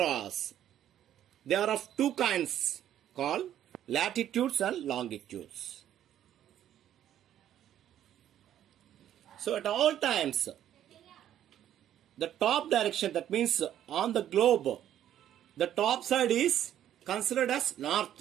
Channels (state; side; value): quieter; left; 11.1 dB